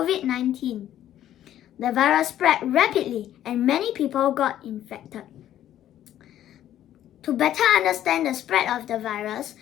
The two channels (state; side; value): quieter; right; 11.9 dB